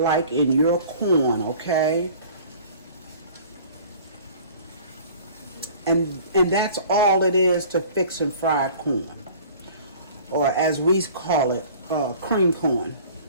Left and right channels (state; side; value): inverted; both; correlation -0.47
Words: in your corn, okay? And that's all it is to fixing fried corn, or as we call it, cream corn.